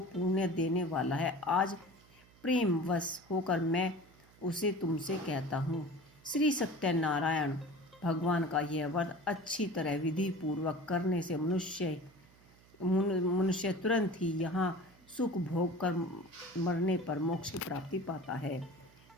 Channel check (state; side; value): noise; right; hum, 27 dB below the sound